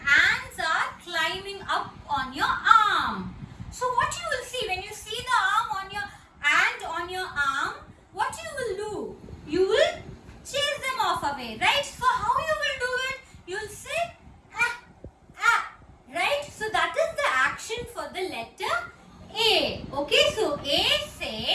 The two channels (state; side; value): identical; both; correlation 1.00